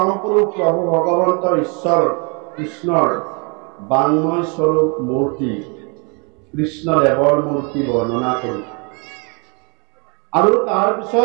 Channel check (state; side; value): quieter; left; 33.3 dB